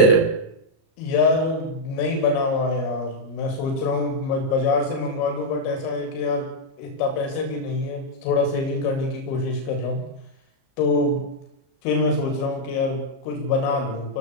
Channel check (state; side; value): late; right; 37 ms